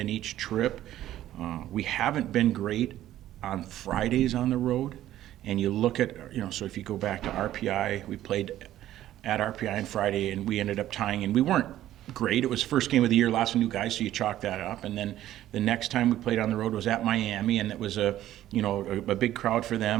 each trip, we haven't been great on Fridays on the road. And you look at, so if you go back to RPI, we played at RPI on Friday and we ended up tying, and we weren't great. It was first game of the year, lots of new guys, so you chalk that up. And then the next time we played on the road was at Miami, and it was a big crowd for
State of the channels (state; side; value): quieter; left; 13.2 dB